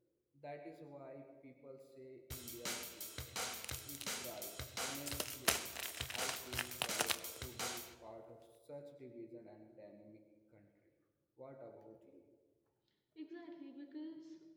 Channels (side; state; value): both; identical; correlation 1.00